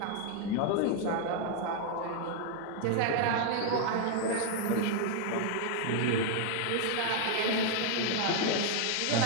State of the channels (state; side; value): different; both; correlation 0.00